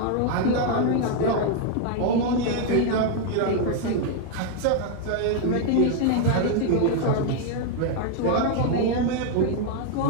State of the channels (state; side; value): different; both; correlation 0.00